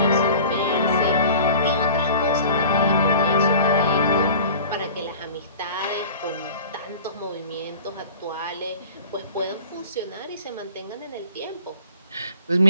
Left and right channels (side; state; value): both; inverted; correlation -0.42